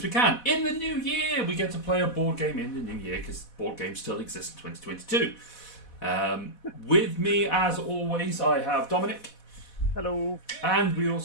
can. In the new year, we get to play a board game in the new year, because board games still exist in 2022. With me, as always, I have Dominic. Hello. And we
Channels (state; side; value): late; right; 4.1 ms